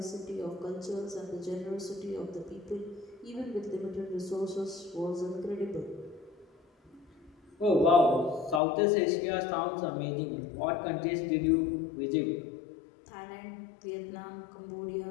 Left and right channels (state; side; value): drops out; right; at 8.6 s